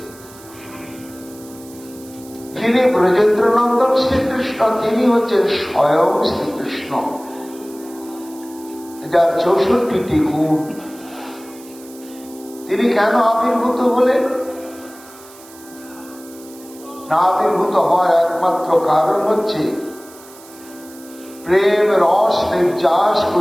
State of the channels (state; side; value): noise; right; hiss, 21 dB below the sound